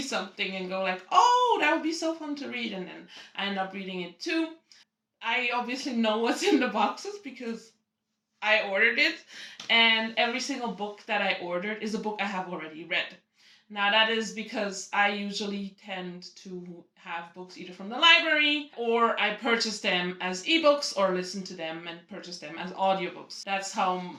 and go like, oh, that would be so fun to read, and then I end up reading it too. I obviously know what's in the boxes because I ordered it, and every single book that I ordered is a book I have already read. Now that is because I usually tend to have books either from the library, or I purchase them as ebooks, or listen to them and purchase them as audiobooks. That's how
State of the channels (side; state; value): both; identical; correlation 1.00